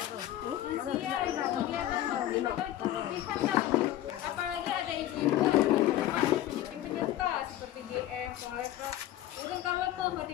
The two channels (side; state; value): right; quieter; 13.3 dB